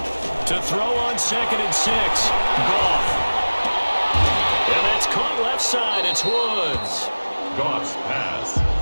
To throw on 2nd and 6. Goff. And that's caught left side. It's Woods. Goff's pass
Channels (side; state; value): both; inverted; correlation -1.00